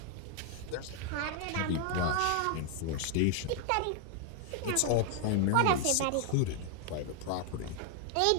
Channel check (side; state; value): both; different; correlation 0.00